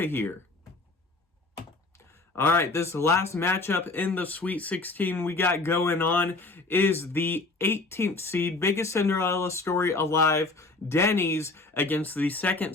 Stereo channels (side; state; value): right; quieter; 3.3 dB